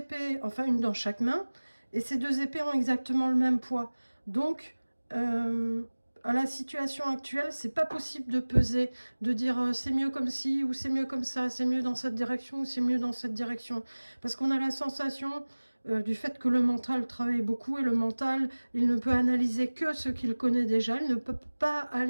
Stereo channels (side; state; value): both; inverted; correlation -1.00